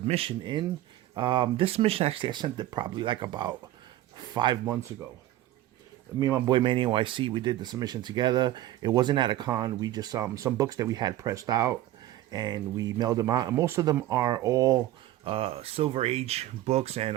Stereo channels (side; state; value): left; quieter; 14.3 dB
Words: in. This submission actually I sent it probably like about 5 months ago. Me and my boy Manny NYC, we did the submission together. It wasn't at a con. We just some books that we had pressed out, and we mailed them out. And most of them are all Silver Age books and